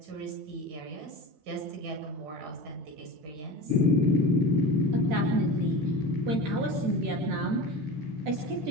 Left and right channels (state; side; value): late; left; 13 ms